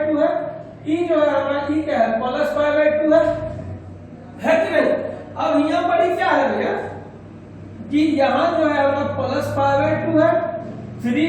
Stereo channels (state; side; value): identical; both; correlation 1.00